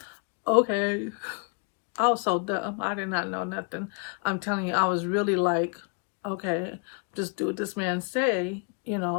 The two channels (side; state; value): right; quieter; 37.0 dB